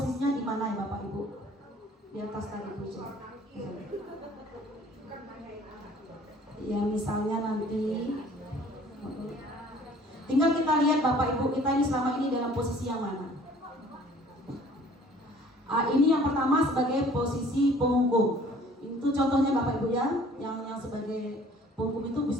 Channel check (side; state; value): both; normal; correlation 0.53